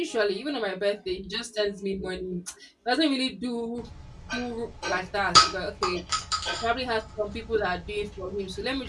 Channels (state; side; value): identical; both; correlation 1.00